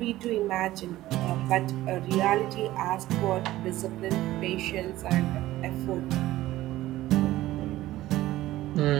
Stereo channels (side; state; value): left; quieter; 15.8 dB